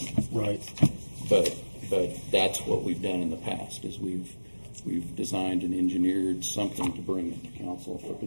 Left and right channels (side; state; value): both; inverted; correlation -1.00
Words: Right. But that's what we've done in the past, is we've designed and engineered something to bring it to council for